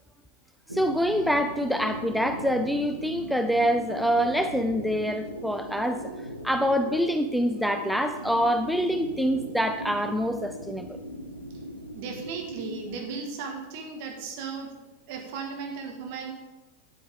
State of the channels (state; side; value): normal; both; correlation 0.72